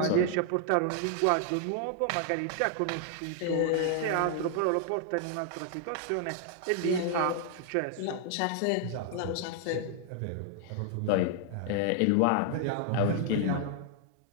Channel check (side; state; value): both; different; correlation 0.00